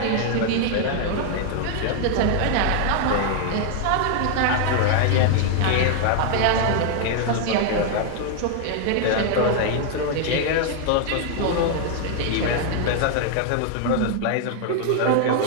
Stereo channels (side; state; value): both; different; correlation 0.00